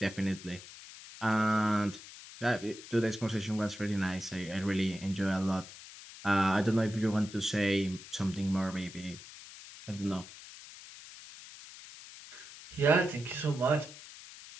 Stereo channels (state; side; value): noise; left; hiss, 16 dB below the sound